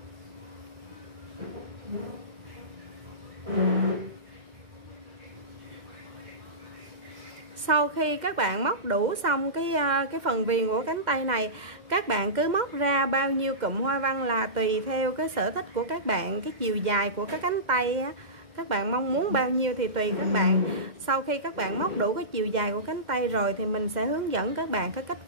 Sau khi các bạn móc đủ xong cái phần viền của cánh tay này, các bạn cứ móc ra bao nhiêu cụm hoa văn là tùy theo cái sở thích của các bạn, cái chiều dài của cái cánh tay á, các bạn mong muốn bao nhiêu thì tùy các bạn. Sau khi các bạn móc đủ cái chiều dài của cánh tay rồi thì mình sẽ hướng dẫn các bạn cái cách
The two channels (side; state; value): left; late; 2.1 ms